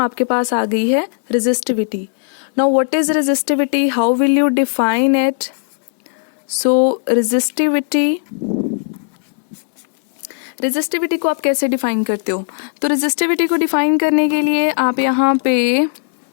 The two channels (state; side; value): silent; right; digital silence